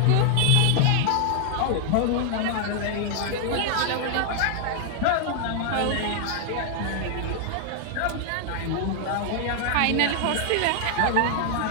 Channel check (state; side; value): different; both; correlation 0.00